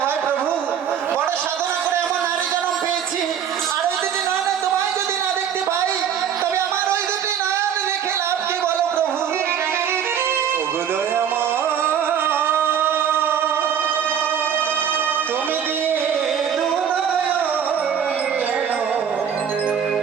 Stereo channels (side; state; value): left; quieter; 8.4 dB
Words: হয় প্রভু? বড় সাধনা করে এমন নারী জন্ম পেয়েছি, আর ওই দুটি নয়নে তোমায় যদি না দেখতে পাই, তবে আমার ওই দুটি নয়ন রেখে লাভ কি বলো প্রভু? ওগো দয়াময়, তুমি দিয়ে দু নয়ন কেন